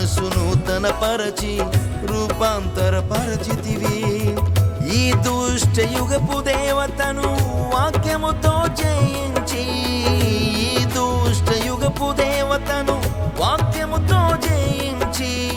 నూతనపరచి రూపాంతరపరచితివి. ఈ దుష్ట యుగపు దేవతను వాక్యముతో జయించి, ఈ దుష్ట యుగపు దేవతను వాక్యముతో జయించి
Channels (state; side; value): identical; both; correlation 1.00